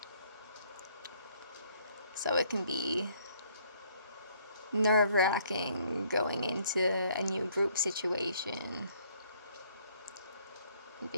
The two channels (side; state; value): both; inverted; correlation -0.64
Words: So it can be nerve-wracking going into a new group situation.